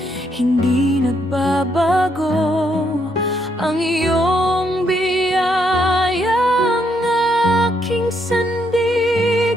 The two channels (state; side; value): normal; both; correlation 0.75